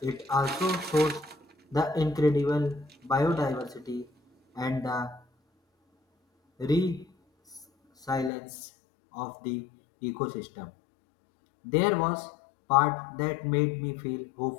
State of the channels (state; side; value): drops out; right; at 8.3 s